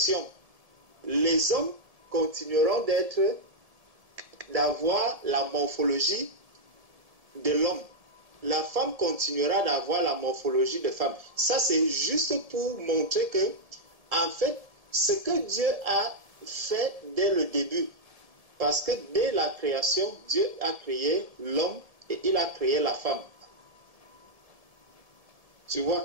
les hommes continueront d'avoir la morphologie de l'homme. La femme continuera d'avoir la morphologie de femme. Ça, c'est juste pour montrer que, en fait, ce que Dieu a fait dès le début, parce que dès la création, Dieu a créé l'homme et il a créé la femme. Tu vois,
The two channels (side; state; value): left; late; 1.7 ms